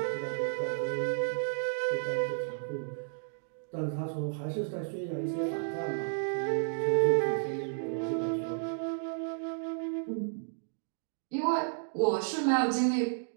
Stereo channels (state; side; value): silent; left; digital silence